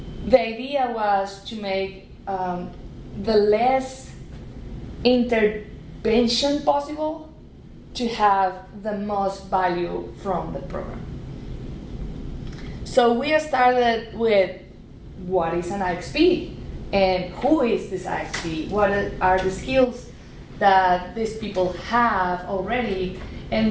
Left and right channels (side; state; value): both; identical; correlation 1.00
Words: the idea was to make the less intervention possible to have the most value from the program. So we started with what is an IXP and who is this IXP? What are the skills that these people have already,